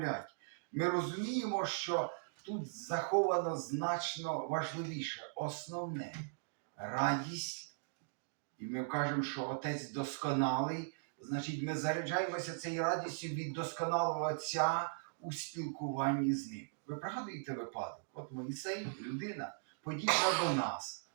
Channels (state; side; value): silent; left; digital silence